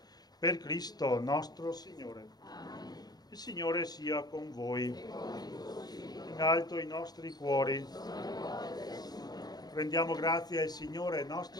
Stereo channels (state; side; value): late; right; 0.19 ms